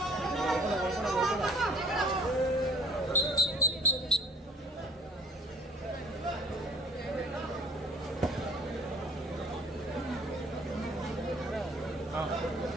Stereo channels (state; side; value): normal; both; correlation 0.52